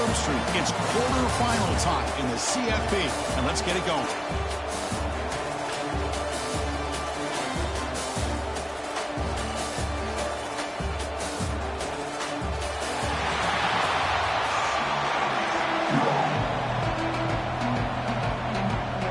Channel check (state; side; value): identical; both; correlation 1.00